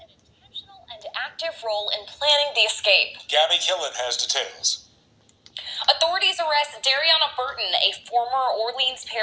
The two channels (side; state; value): both; identical; correlation 1.00